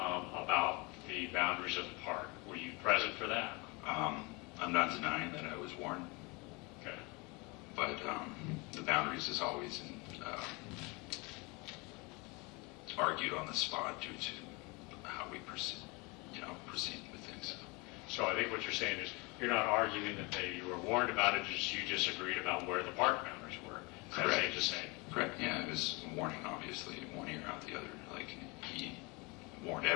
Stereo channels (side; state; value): right; quieter; 27.6 dB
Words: the boundaries of the park. Were you present for that? I'm not denying that I was warned, Okay. but the boundaries is always argued on the spot due to how we proceed with things. So I think what you're saying is you're not arguing that you were warned about it, just you disagreed about where the park boundaries were. Is that safe to say? Correct. Yeah, it was a warning, obviously, one ear out the other. Like, he warned